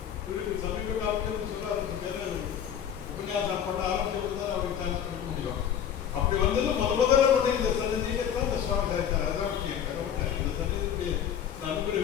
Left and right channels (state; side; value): quieter; right; 9.0 dB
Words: திருப்பி சமீப காலத்தில் சொல்ல ஆரம்பிச்சு உபன்யாசம் பண்ண ஆரம்பிச்சு தான் அவருக்கு சான்ஸ் கொடுக்க முடியும். அப்படி வந்தது முதல்ல கொண்டு இந்த சன்னதியை தான் இந்த சுவாமி சாதித்தார். அதுதான் இந்த சன்னதியுடைய